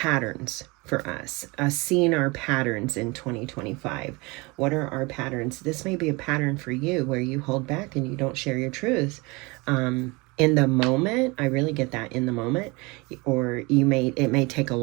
for us, seeing our patterns in 2025. What are our patterns? This may be a pattern for you where you hold back and you don't share your truth. In the moment, I really get that in the moment, or it may take a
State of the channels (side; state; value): left; quieter; 25.7 dB